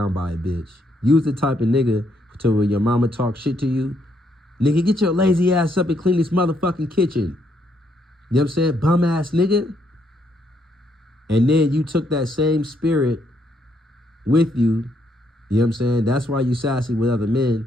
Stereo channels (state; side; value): normal; both; correlation 0.74